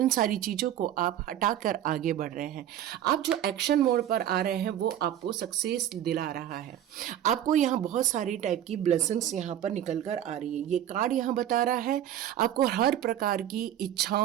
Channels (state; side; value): quieter; left; 11.2 dB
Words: सारी चीज़ों को आप हटाकर आगे बढ़ रहे हैं। आप जो एक्शन मोड पर आ रहे हैं वो आपको सक्सेस दिला रहा है। आपको यहाँ बहुत सारी टाइप की ब्लेसिंग्स यहाँ पर निकल कर आ रही है। ये कार्ड यहाँ बता रहा है आपको हर प्रकार की